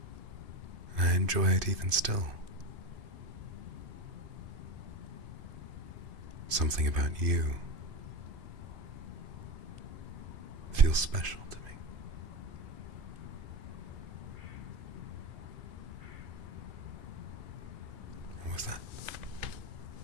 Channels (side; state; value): left; late; 2.5 ms